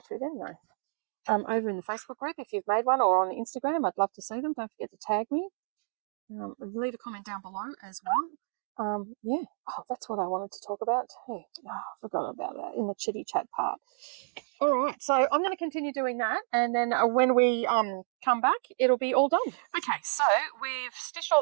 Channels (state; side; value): silent; left; digital silence